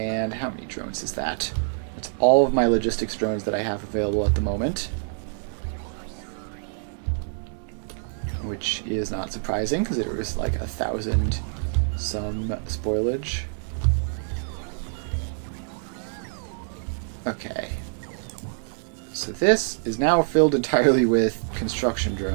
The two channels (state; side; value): silent; left; digital silence